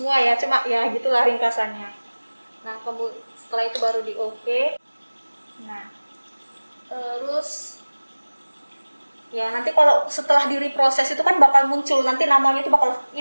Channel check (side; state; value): both; inverted; correlation -1.00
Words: ya, cuma ya gitulah ringkasannya. Nah, setelah itu baru di OK. Nah, terus ya nanti kalau setelah direproses itu kan bakal muncul, nanti namanya